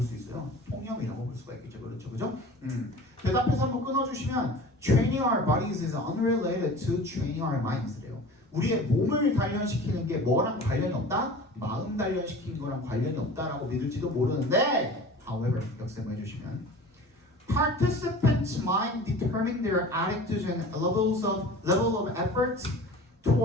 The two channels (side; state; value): both; normal; correlation 0.39